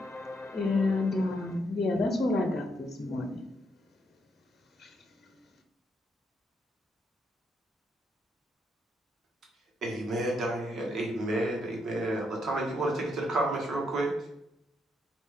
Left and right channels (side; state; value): both; normal; correlation 0.76